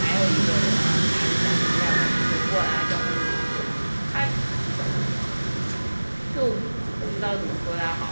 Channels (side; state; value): both; inverted; correlation -1.00